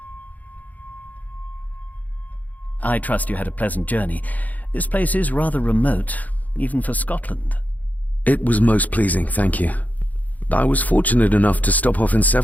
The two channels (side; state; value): right; late; 0.078 ms